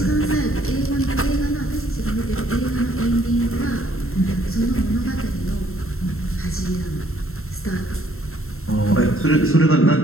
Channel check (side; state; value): right; late; 0.62 ms